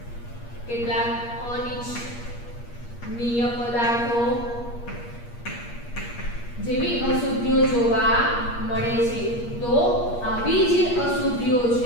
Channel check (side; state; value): right; late; 8.4 ms